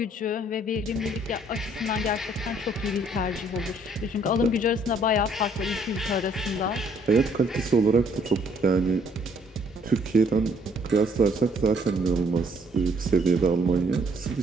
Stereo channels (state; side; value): normal; both; correlation 0.65